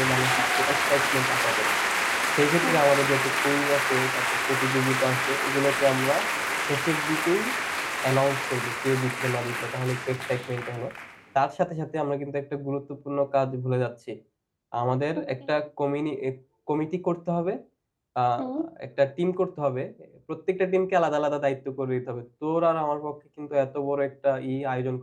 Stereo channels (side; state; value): both; identical; correlation 1.00